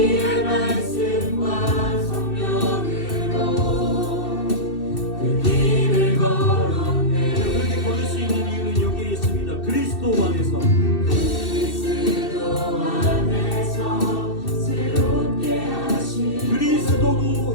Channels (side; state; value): right; late; 2.7 ms